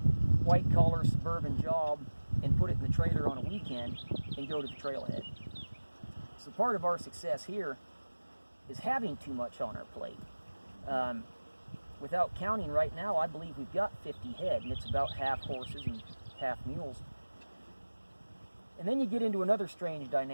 white-collar suburban job and put it in the trailer on a weekend and go to the trailhead. So part of our success here is having too much on our plate. Without counting right now, I believe we've got 50 head, and it's about half horses and half mules. And then you get into another strange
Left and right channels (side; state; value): both; inverted; correlation -1.00